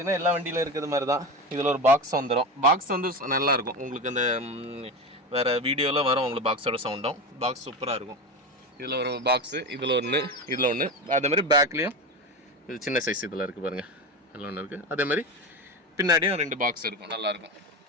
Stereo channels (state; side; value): normal; both; correlation 0.22